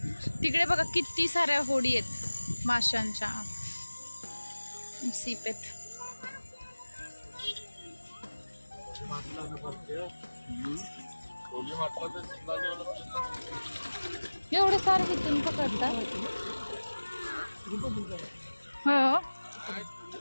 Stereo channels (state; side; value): inverted; both; correlation -1.00